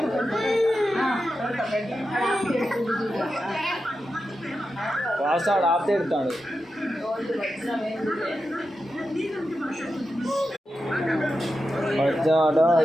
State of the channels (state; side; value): normal; both; correlation 0.90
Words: వాస్తాడు ఆపితే ఎడతాడు